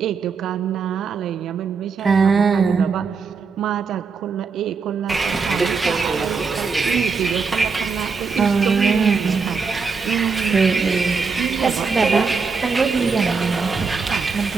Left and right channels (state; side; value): quieter; left; 5.1 dB